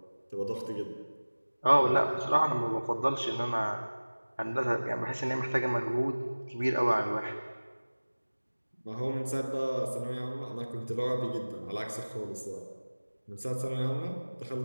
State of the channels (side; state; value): both; inverted; correlation -1.00